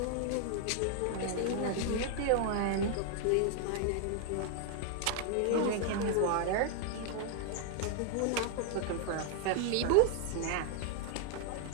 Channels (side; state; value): both; different; correlation 0.00